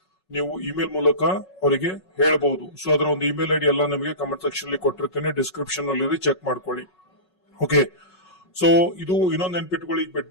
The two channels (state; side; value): late; right; 5.4 ms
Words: ನೀವು ಇಮೇಲ್ ಮೂಲಕ ಅವರಿಗೆ ಹೇಳಬಹುದು. ಸೊ ಅದರ ಒಂದು ಇಮೇಲ್ ಐಡಿ ಎಲ್ಲ ನಿಮಗೆ ಕಮೆಂಟ್ ಸೆಕ್ಷನ್ ಅಲ್ಲಿ ಕೊಟ್ಟಿರ್ತೇನೆ, ಡಿಸ್ಕ್ರಿಪ್ಷನ್ ಅಲ್ಲಿ ಚೆಕ್ ಮಾಡ್ಕೊಳ್ಳಿ. ಓಕೆ, ಸೊ ಇದು ಇನ್ನೊಂದು ನೆನ್ಪಿಟ್ಕೊಳ್ಳಿ,